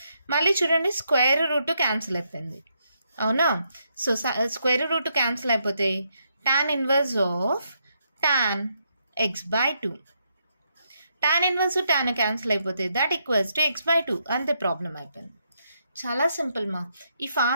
మళ్ళీ చూడండి స్క్వేర్ రూట్ క్యాన్సిల్ అయిపోయింది. అవునా? సో స్క్వేర్ రూట్ క్యాన్సిల్ అయిపోతే tan inverse of tan x/2. tan inverse tan cancel అయిపోతే దట్ ఈక్వల్స్ టు x/2. అంతే, ప్రాబ్లం అయిపోయింది. చాలా సింపుల్ మా. ఈ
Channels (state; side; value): inverted; both; correlation -0.78